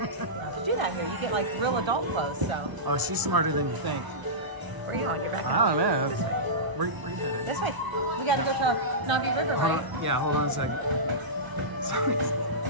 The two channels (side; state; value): left; late; 1.0 ms